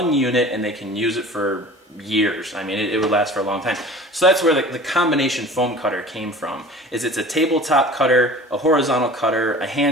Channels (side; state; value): both; normal; correlation 0.42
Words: unit and they can use it for years. I mean, it would last for a long time. So that's where the combination foam cutter came from. It's a tabletop cutter, a horizontal cutter, a